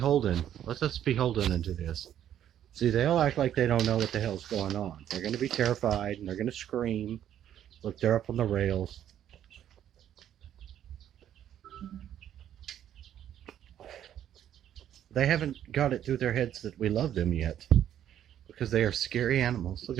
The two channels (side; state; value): left; quieter; 10.6 dB